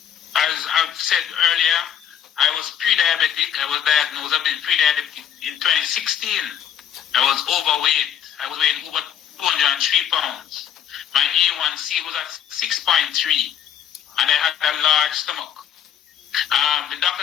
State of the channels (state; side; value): quieter; right; 9.4 dB